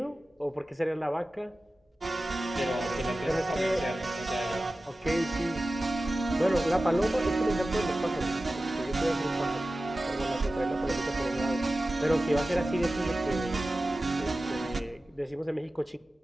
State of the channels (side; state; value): both; normal; correlation 0.95